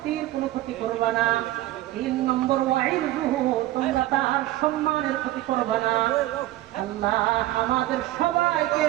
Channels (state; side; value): quieter; left; 15.7 dB